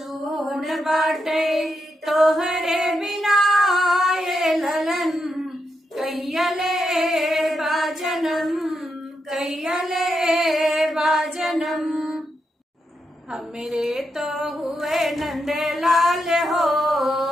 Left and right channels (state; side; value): normal; both; correlation 0.83